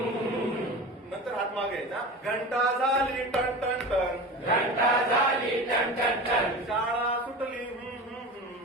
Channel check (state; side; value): normal; both; correlation 0.31